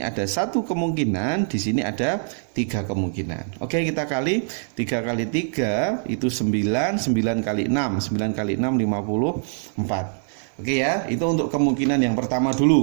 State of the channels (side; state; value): left; silent; digital silence